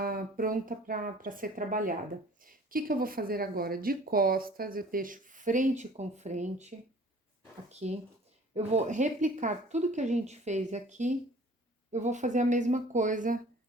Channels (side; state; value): both; normal; correlation 0.49